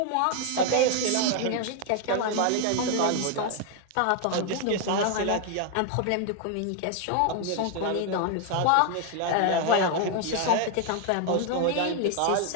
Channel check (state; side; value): different; both; correlation 0.00